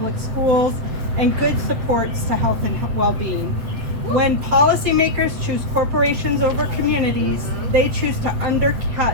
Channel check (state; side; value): late; left; 8.1 ms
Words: schools, and good supports to health and well-being. When policymakers choose corporations over communities, they choose to